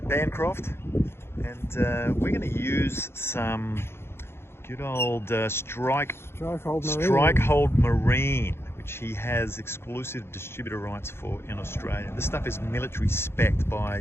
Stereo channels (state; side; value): late; right; 0.12 ms